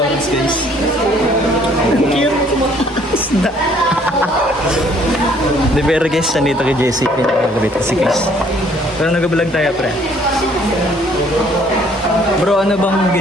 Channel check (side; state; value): both; normal; correlation 0.61